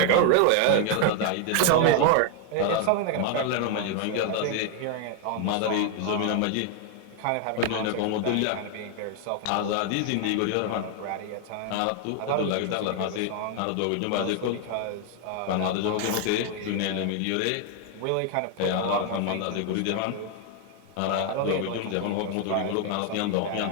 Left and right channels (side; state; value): both; different; correlation 0.00